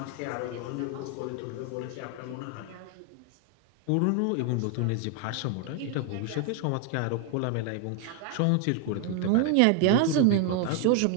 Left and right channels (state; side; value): different; both; correlation 0.01